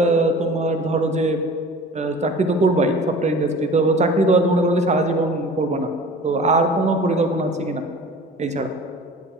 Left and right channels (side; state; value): both; normal; correlation 0.42